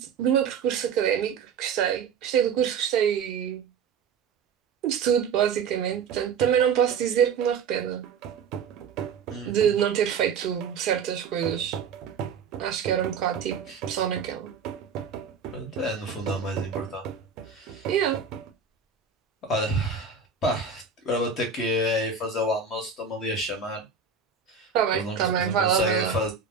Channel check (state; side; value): quieter; left; 6.1 dB